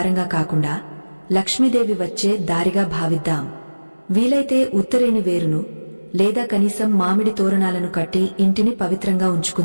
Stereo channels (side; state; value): both; inverted; correlation -1.00